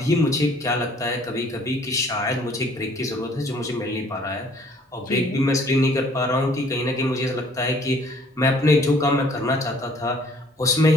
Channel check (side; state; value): both; normal; correlation 0.58